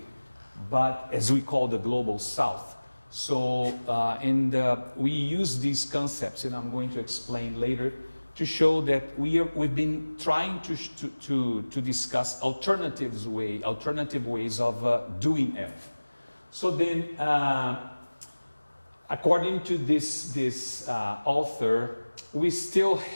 but as we call the global south. So we use these concepts, and I'm going to explain later, to show that we've been trying to discuss alternative ways of doing ELF. So then, according to this author, we still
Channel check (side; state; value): both; inverted; correlation -1.00